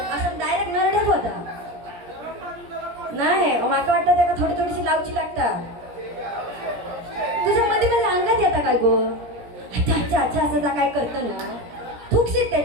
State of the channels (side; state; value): left; late; 17 ms